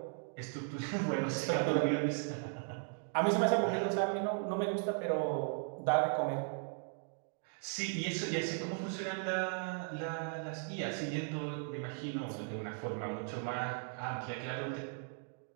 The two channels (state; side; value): silent; left; 53 dB below the other